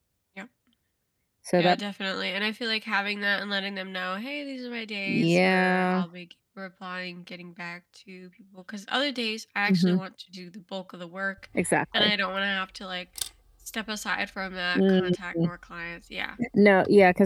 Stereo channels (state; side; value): identical; both; correlation 1.00